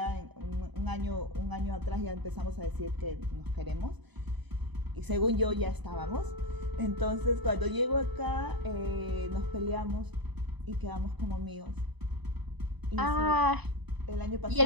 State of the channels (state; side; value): late; left; 1.0 ms